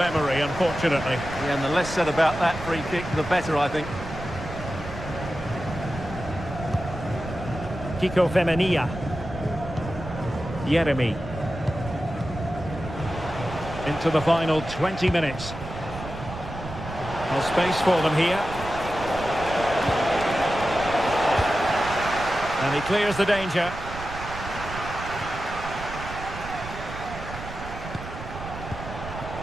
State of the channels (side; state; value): right; noise; rumble, 11 dB below the sound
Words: unfortunately. Yeah, and the less said about that free kick, the better, I think. Kiko Femenia. Yeremy. Into the final 20 minutes. Well, space for them here. And he clears the danger.